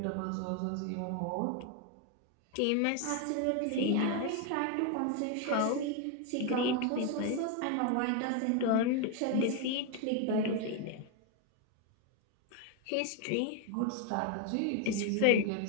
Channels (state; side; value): different; both; correlation 0.01